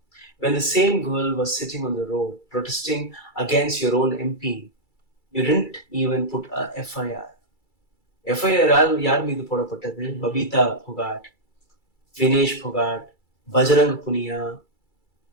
When the same girl was sitting on the road protesting against your own MP, you didn't even put a FIR. FIR யார் மீது போடப்பட்டது? பபிதா புகாட், வினேஷ் புகாட், பஜரங் புனியா,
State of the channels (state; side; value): late; right; 2.3 ms